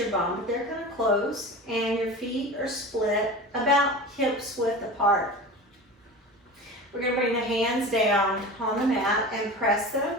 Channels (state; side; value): normal; both; correlation 0.33